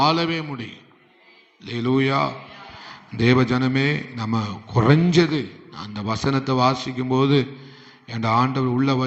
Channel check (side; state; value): both; identical; correlation 1.00